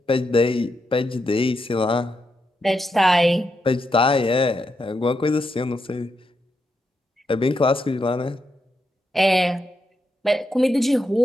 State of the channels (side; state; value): both; normal; correlation 0.83